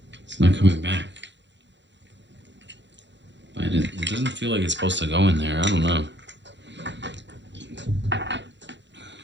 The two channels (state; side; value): late; left; 0.52 ms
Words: coming back. It doesn't feel like it's supposed to go in there. I don't know.